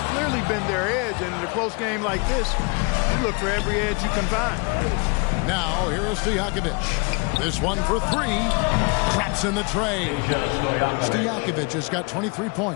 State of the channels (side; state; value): right; quieter; 31.7 dB